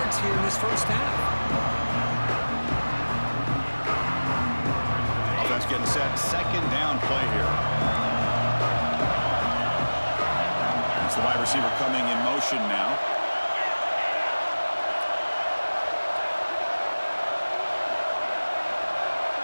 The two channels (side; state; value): both; inverted; correlation -1.00